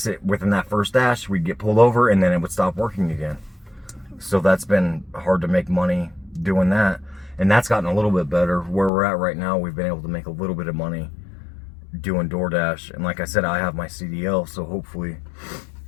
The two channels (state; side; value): drops out; right; at 8.9 s